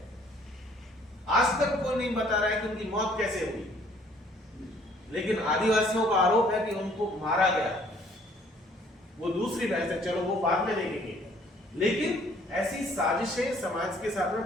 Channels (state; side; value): normal; both; correlation 0.59